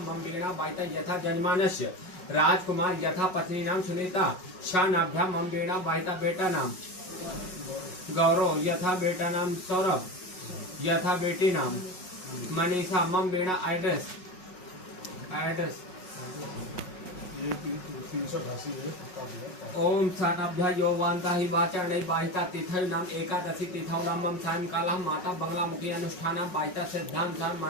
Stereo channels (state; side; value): late; right; 5.4 ms